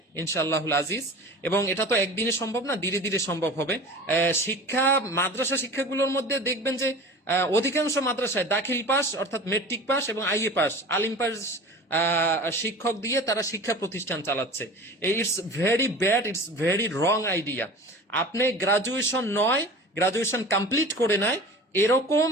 ইনশাআল্লাহুল আজিজ। এবং এটা তো একদিনে সম্ভব না, ধীরে ধীরে সম্ভব হবে। মাদ্রাসা শিক্ষাগুলোর মধ্যে দেখবেন যে অধিকাংশ মাদ্রাসায় দাখিল পাস অর্থাৎ মেট্রিক পাস এবং আইএ পাস, আলিম পাস শিক্ষক দিয়ে তারা শিক্ষা প্রতিষ্ঠান চালাচ্ছে। It's very bad, it's very wrong idea. আপনি গ্রাজুয়েশন কমপ্লিট করে নেয় এরকম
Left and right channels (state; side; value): normal; both; correlation 0.37